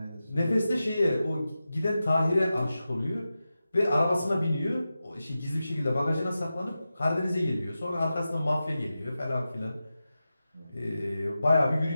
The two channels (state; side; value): inverted; both; correlation -0.93